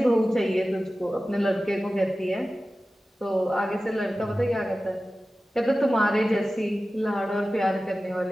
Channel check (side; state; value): both; normal; correlation 0.95